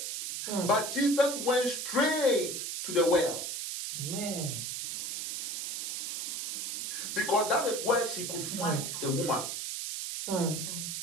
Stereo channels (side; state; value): right; noise; hiss, 3 dB below the sound